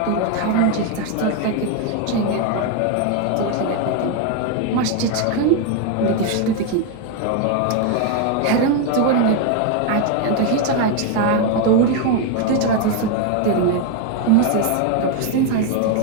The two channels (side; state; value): both; different; correlation 0.01